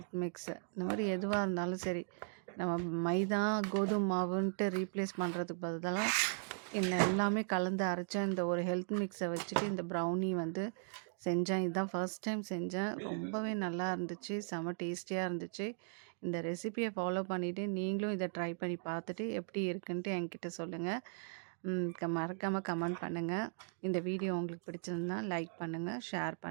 மிக்ஸு இந்த மாதிரி எதுவாக இருந்தாலும் சரி, நம்ம மைதா கோதுமை மாவுன்ட்டு ரீப்ளேஸ் பண்ணுறதுக்கு பதிலாக இந்த எல்லாமே கலந்து அரைச்ச இந்த ஒரு ஹெல்த் மிக்ஸை வச்சுட்டு இந்த ப்ரௌனி வந்து செஞ்சேன். இதுதான் ஃபர்ஸ்ட் டைம் செஞ்சேன். ரொம்பவே நல்லா இருந்துச்சு, செம டேஸ்டியாக இருந்துச்சு. இந்த ரெசிபியை ஃபாலோ பண்ணிவிட்டு நீங்களும் இதை ட்ரை பண்ணி பார்த்துட்டு எப்படி இருக்குன்ட்டு என்கிட்ட சொல்லுங்கள். மறக்காமல் கமெண்ட் பண்ணுங்கள். இந்த வீடியோ உங்களுக்கு பிடிச்சிருந்தா லைக் பண்ணுங்கள், ஷேர்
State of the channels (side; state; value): left; silent; digital silence